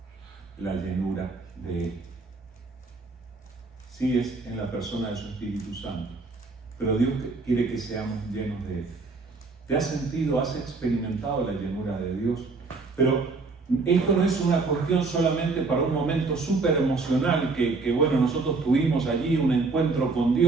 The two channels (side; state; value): left; quieter; 3.9 dB